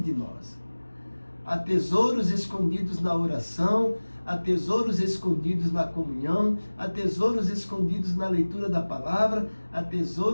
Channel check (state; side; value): inverted; both; correlation -1.00